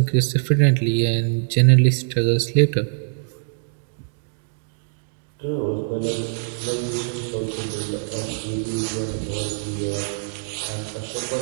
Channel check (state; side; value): silent; left; digital silence